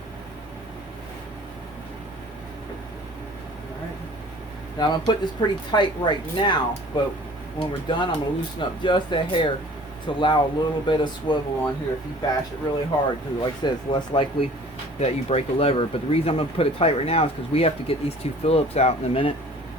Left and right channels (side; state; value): both; normal; correlation 0.49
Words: Now I'm going to put this pretty tight right now, but when we're done I'm going to loosen up just a hair to allow a little bit of swivel on here if you bash it really hard, because like I said, it's less likely that you break a lever. But the reason I'm going to put it tight right now is because we have to get these two Phillips out in a minute.